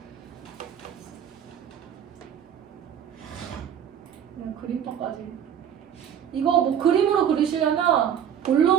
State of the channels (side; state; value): left; quieter; 9.0 dB